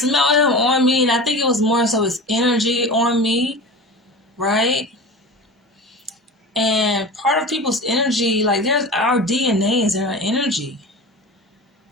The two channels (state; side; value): normal; both; correlation 0.33